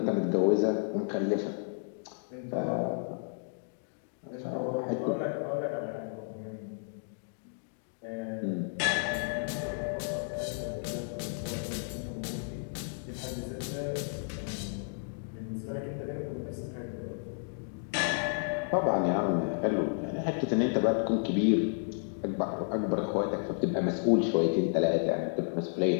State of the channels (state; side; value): silent; right; digital silence